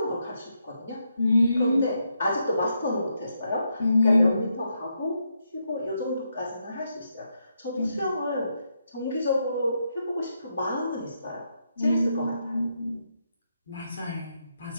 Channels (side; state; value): both; inverted; correlation -0.81